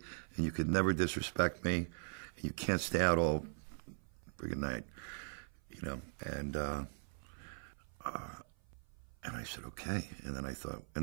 and you could never disrespect me. And you can't stay out all friggin' night, you know. And I said, okay. And then I thought,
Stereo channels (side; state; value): left; silent; 51 dB below the other